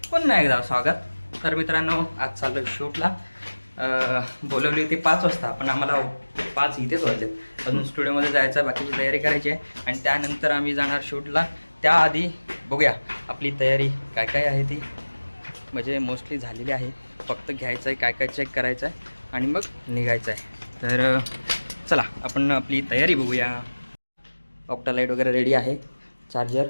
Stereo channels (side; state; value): both; inverted; correlation -1.00